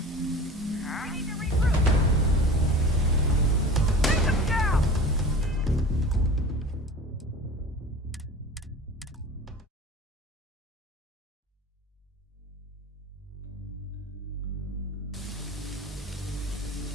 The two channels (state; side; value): normal; both; correlation 0.38